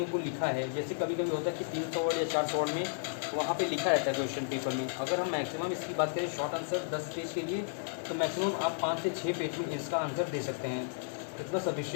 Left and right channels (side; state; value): right; silent; 56 dB below the other